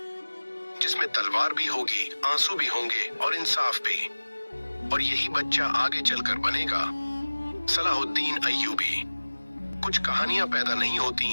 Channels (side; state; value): both; inverted; correlation -1.00